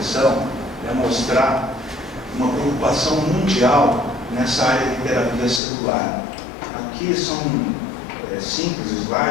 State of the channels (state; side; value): drops out; right; at 5.6 s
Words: é mostrar uma preocupação mundial nessa área de terapia celular. Aqui são simples